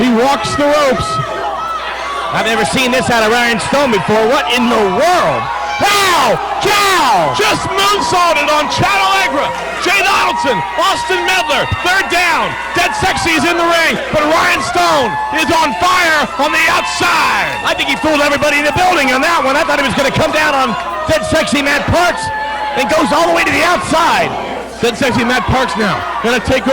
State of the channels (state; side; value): identical; both; correlation 1.00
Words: He walks the ropes. I've never seen this out of Ryan Stone before. What in the world? Wow! Chow! Just moonsaulted on Chad Allegra. Jay Donaldson, Austin Medler, they're down. Dead Sexy's in the ring, but Ryan Stone is on fire on the outside. I think he fooled everybody in the building on that one. I thought he was going to come down on Dead Sexy Matt Parks and goes all the way to the outside. Dead Sexy Matt Parks now gonna take